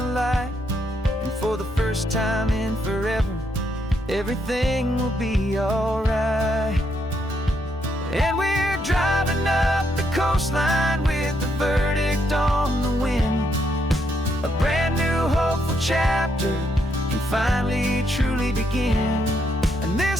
light. And for the first time in forever, everything will be alright. And we're driving up the coastline with the verdict on the wind. A brand new hopeful chapter can finally truly begin. And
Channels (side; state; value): both; normal; correlation 0.76